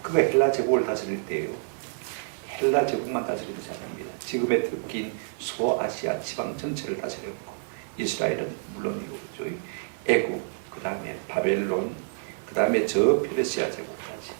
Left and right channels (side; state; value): left; silent; 59 dB below the other